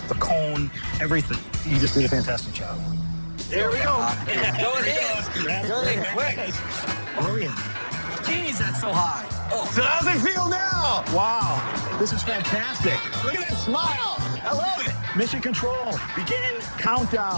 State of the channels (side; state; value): both; inverted; correlation -1.00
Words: the cone, everything. You just did a fantastic job. There we go. Go ahead. Go ahead, quick. Oh, yeah. Jeez, that's so high. Oh. So how's it feel now? Wow. This is fantastic. Look at that smile. I love it. Mission control. Begin